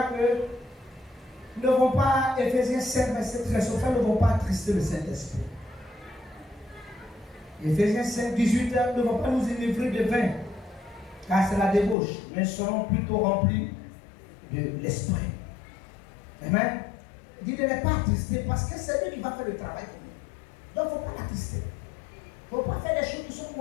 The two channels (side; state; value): right; drops out; at 12.0 s